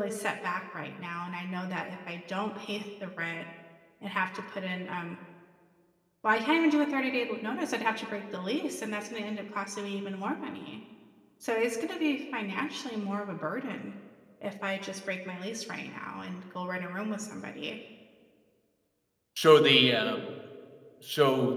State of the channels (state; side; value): identical; both; correlation 1.00